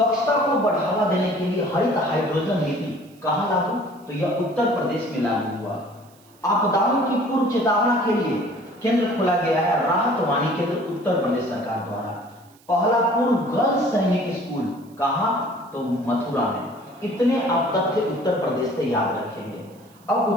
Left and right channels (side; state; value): right; noise; hiss, 29 dB below the sound